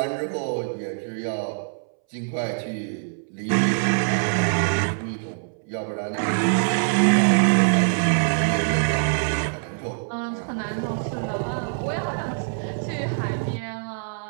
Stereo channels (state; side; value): silent; left; 62 dB below the other